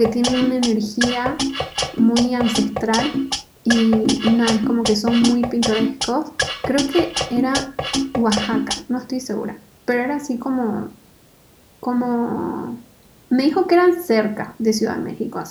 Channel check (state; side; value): identical; both; correlation 1.00